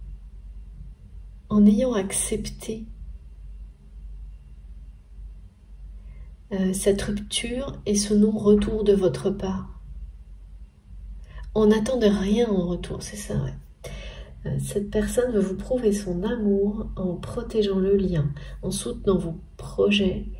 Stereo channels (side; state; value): both; identical; correlation 1.00